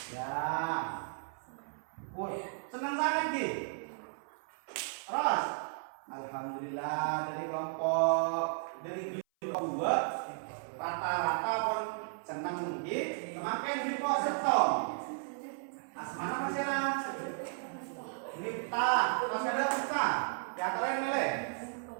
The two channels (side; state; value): left; silent; 55 dB below the other